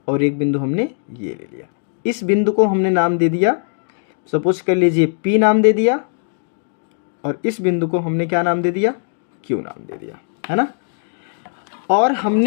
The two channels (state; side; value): silent; right; 66 dB below the other